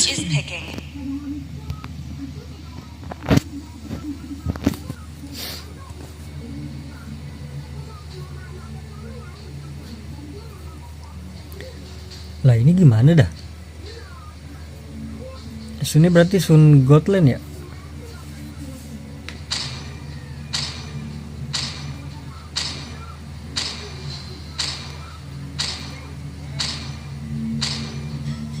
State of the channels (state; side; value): identical; both; correlation 1.00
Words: picking. Lah ini gimana dah? Sunnya berarti Sun Godland ya?